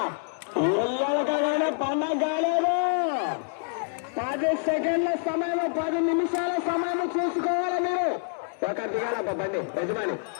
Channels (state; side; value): silent; right; digital silence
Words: ఎల్లకగానే పండగ కాలేదు. 10 సెకండ్ల సమయం, 10 నిమిషాల సమయం చూసుకోవాలి మీరు. ఒక దిగాల బండి యజమాని